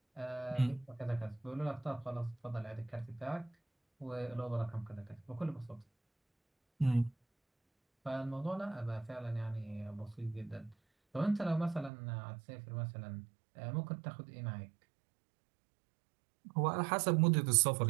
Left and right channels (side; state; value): left; drops out; at 11.9 s